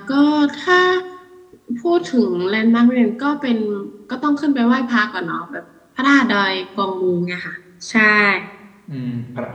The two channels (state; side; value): identical; both; correlation 1.00